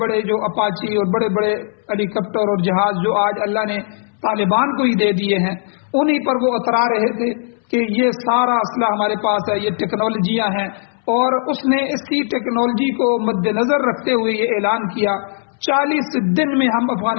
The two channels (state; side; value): silent; right; 67 dB below the other